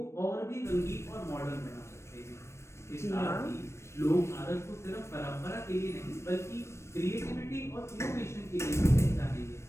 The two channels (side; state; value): right; late; 0.13 ms